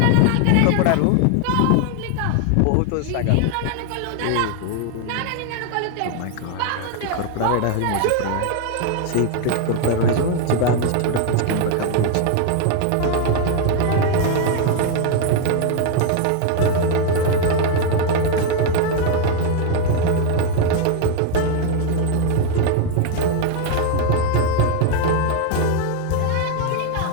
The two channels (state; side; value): different; both; correlation 0.01